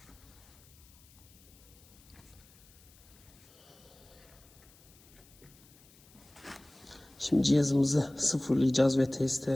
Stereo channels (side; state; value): left; noise; hiss, 26 dB below the sound